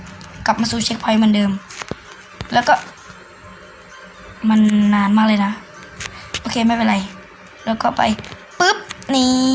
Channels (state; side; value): identical; both; correlation 1.00